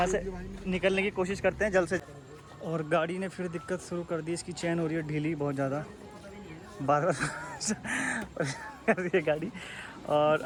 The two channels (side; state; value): both; identical; correlation 1.00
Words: से निकलने की कोशिश करते हैं जल्द से। और गाड़ी ने फिर दिक्कत शुरू कर दी, इसकी चैन हो रही है ढीली बहुत ज़्यादा, बार बार कर रही है गाड़ी। और